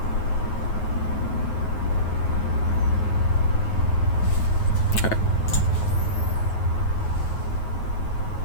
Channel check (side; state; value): right; late; 9.4 ms